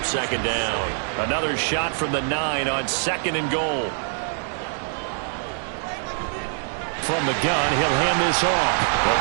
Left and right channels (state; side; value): silent; left; 56 dB below the other